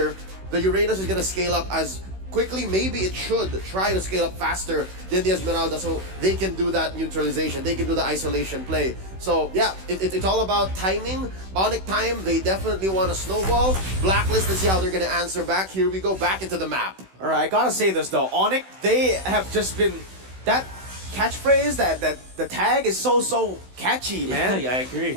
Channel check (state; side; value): late; left; 16 ms